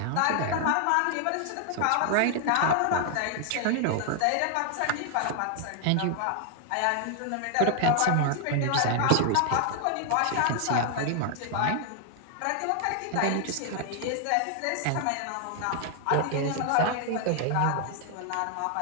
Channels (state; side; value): different; both; correlation 0.00